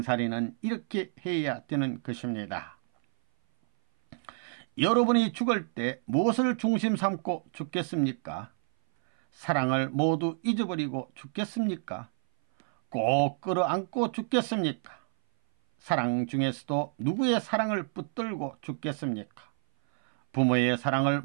이렇게 해야 되는 것입니다. 여러분이 죽을 때 무엇을 중심 삼고 죽겠습니까? 사랑을 모두 잊어버리고 죽겠습니까? 꼭 끌어안고 죽겠습니까? 사랑 중에서도 누구의 사랑을 붙들고 죽겠습니까? 부모의 사랑을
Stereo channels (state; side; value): silent; left; 57 dB below the other